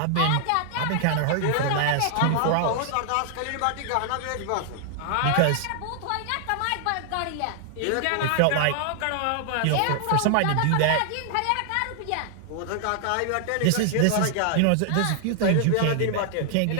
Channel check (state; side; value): different; both; correlation 0.00